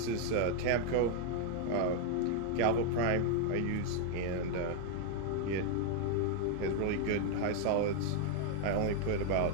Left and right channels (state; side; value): different; both; correlation 0.00